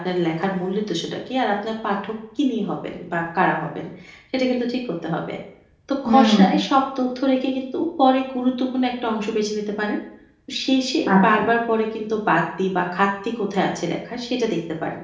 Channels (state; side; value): identical; both; correlation 1.00